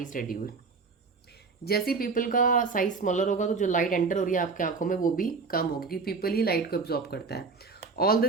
is reduced। जैसे पीपल का साइज स्मॉलर होगा तो जो लाइट एंटर हो रही है आपकी आंखों में वो भी कम होगी, क्योंकि पीपल ही लाइट को एब्जॉर्ब करता है। All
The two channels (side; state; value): left; quieter; 4.6 dB